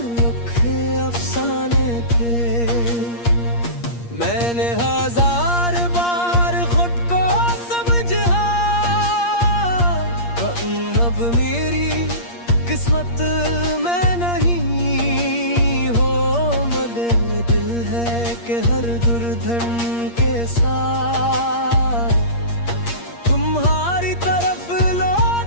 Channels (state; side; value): late; right; 8.5 ms